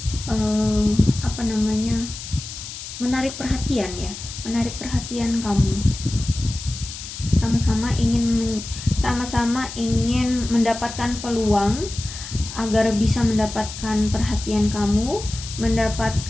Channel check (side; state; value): left; noise; hiss, 10 dB below the sound